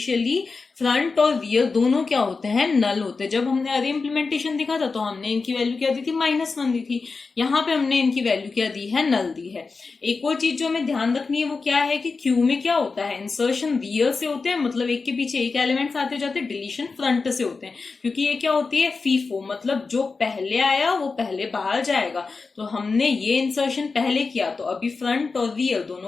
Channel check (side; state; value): right; quieter; 4.4 dB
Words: फ्रंट और रियर दोनों क्या होते हैं, नल होते हैं। जब हमने अरे इम्प्लीमेंटेशन देखा था तो हमने इनकी वैल्यू क्या दी थी, -1 दी थी। यहाँ पे हमने इनकी वैल्यू क्या दी है, नल दी है। एक और चीज जो हमें ध्यान रखनी है वो क्या है कि क्यू में क्या होता है, इंसर्शन रियर से होते हैं, मतलब एक के पीछे एक एलिमेंट्स आते जाते, डिलीशन फ्रंट से होते हैं। क्योंकि ये क्या होती है, फीफो, मतलब जो पहले आया वो पहले बाहर जाएगा। तो हमने ये इंसर्शन पहले किया, तो अभी फ्रंट और रियर